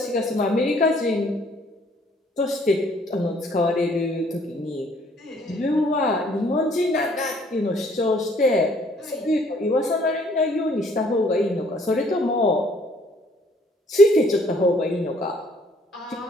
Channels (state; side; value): normal; both; correlation 0.62